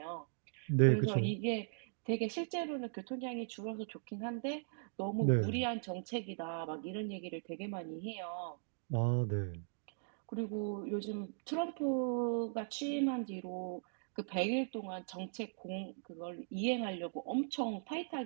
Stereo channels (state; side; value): silent; left; digital silence